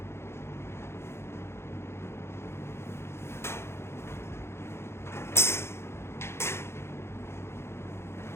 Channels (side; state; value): right; late; 0.12 ms